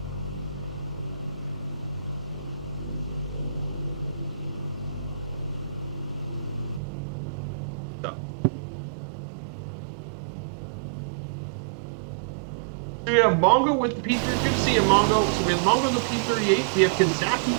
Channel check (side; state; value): left; drops out; at 6.8 s